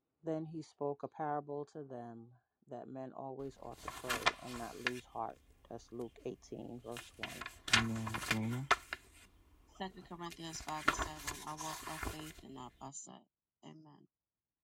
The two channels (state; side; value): identical; both; correlation 1.00